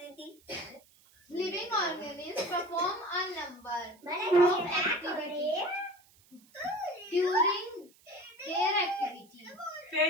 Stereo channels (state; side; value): noise; right; hiss, 29 dB below the sound